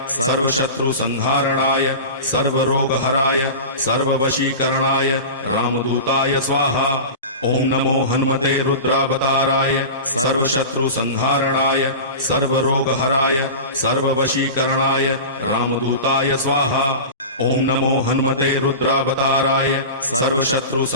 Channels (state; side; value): inverted; both; correlation -0.31